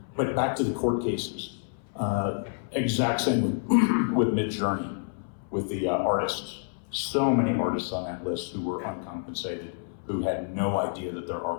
But back to the court cases. Exact same with Midjourney, with the artists. So many artists on that list who were uncompensated, who had no idea that their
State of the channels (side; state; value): right; silent; 59 dB below the other